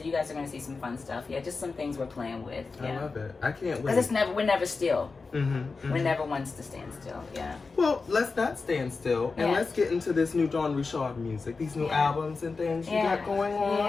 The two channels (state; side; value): quieter; right; 4.3 dB